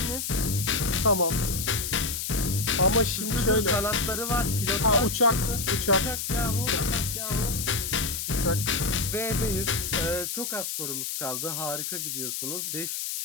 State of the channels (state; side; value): noise; left; hiss, 3 dB below the sound